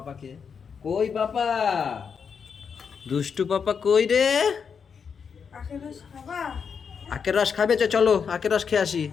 কই পাপা, দুষ্টু পাপা কই রে? আখের রস খাবে? চলো আখের রস খেয়ে আসি।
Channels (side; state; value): right; quieter; 6.4 dB